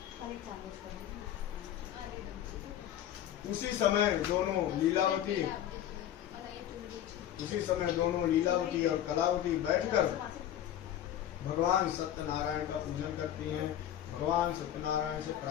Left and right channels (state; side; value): quieter; right; 11.3 dB